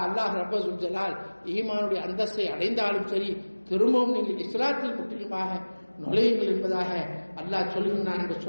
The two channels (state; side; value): inverted; both; correlation -1.00